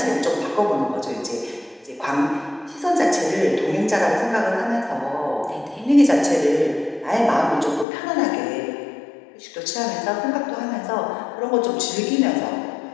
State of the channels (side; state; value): right; drops out; at 7.9 s